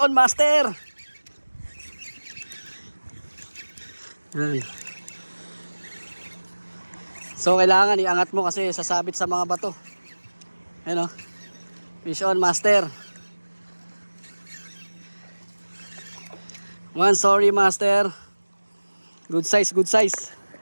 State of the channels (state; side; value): inverted; both; correlation -1.00